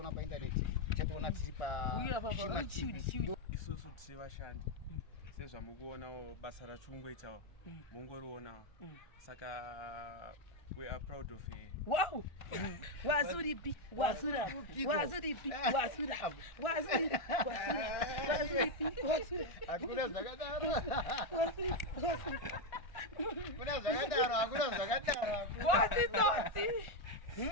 paindaneti chatoona tiri isusu tiri vashandi sezvamukuonawo basa rachungoitawo mungorionawo. Saka We are proud of her. Wow. Wazuripi, wazura, wazuripi, wazura, wazuripi, wazuripi, wazura. Hakuna zakadaro. Kuna zakadaro. What is that?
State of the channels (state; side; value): late; right; 1.5 ms